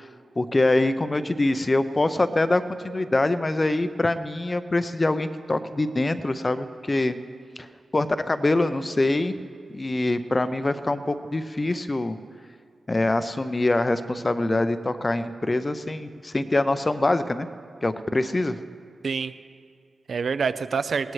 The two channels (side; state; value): both; normal; correlation 0.97